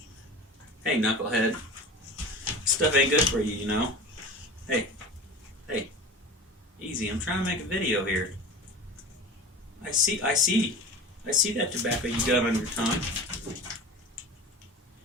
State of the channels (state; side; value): normal; both; correlation 0.34